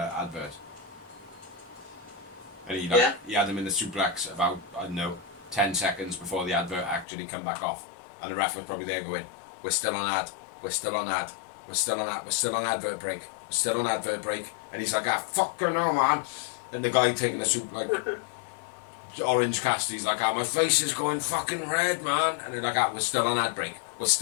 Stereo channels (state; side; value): drops out; right; at 7.1 s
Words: And he had him in the suplex about, I don't know, 10 seconds before the advert actually come back off. And the ref was probably there going, we're still on ad, we're still on ad, we're still on ad, we're still on advert break, we're still on advert break. And he's like, fucking no, man. And the guy taking the soup, like, Orange Cassidy's like, my face is going fucking red, man. And they're like, we're still on ad break, we're